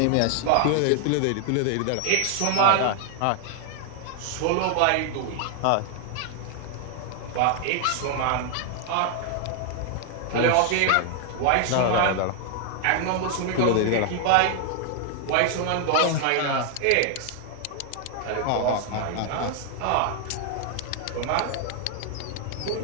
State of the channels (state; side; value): different; both; correlation 0.00